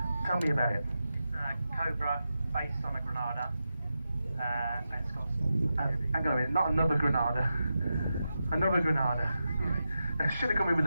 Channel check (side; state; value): both; inverted; correlation -0.89